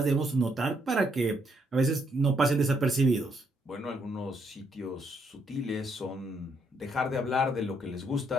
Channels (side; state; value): both; normal; correlation 0.73